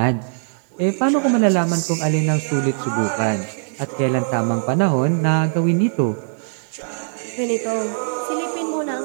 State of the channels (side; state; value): left; silent; digital silence